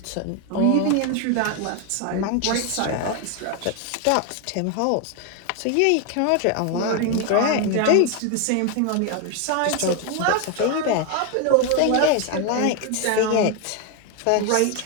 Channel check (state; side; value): different; both; correlation 0.01